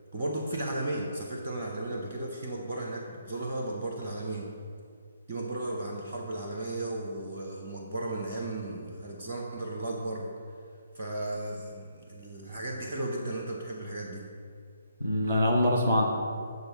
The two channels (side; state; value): both; inverted; correlation -0.74